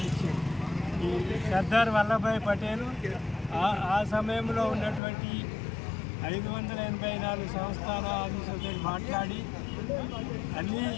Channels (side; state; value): right; drops out; at 5.0 s